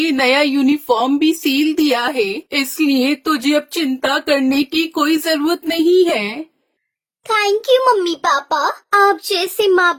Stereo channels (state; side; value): identical; both; correlation 1.00